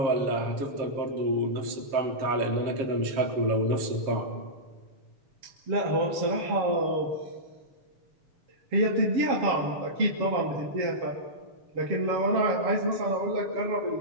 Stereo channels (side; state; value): left; late; 7.4 ms